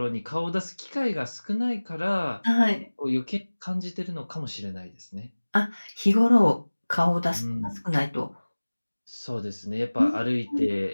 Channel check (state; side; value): inverted; both; correlation -1.00